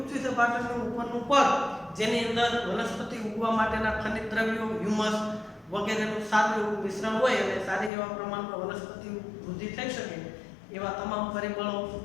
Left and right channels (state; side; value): drops out; right; at 7.9 s